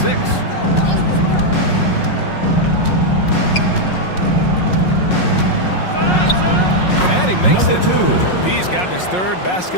6. And he makes it. P's gotten his 3rd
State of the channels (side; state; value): right; late; 5.5 ms